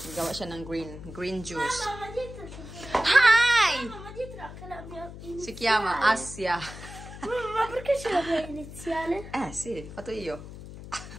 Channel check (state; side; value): noise; left; hum, 13 dB below the sound